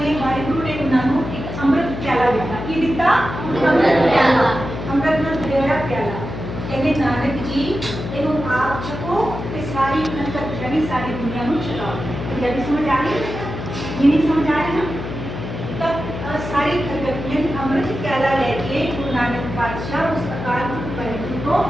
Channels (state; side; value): noise; left; hum, 7 dB below the sound